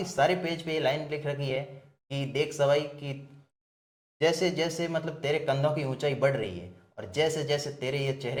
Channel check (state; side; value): identical; both; correlation 1.00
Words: सारे पेज पे ये लाइन लिख रखी है कि देख सवाई कि जैसे जैसे मतलब तेरे कंधों की ऊंचाई बढ़ रही है और जैसे जैसे तेरे ये